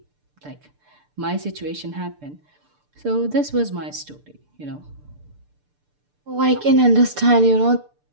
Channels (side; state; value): left; late; 6.8 ms